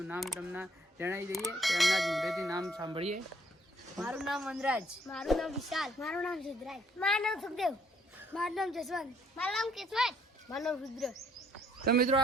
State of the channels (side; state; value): both; normal; correlation 0.65